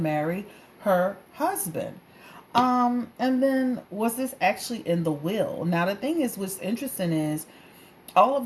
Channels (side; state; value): both; identical; correlation 1.00